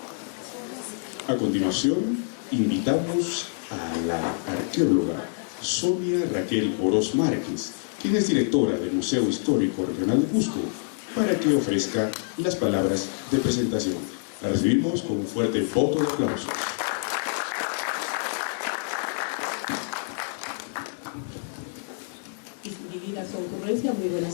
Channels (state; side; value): silent; right; digital silence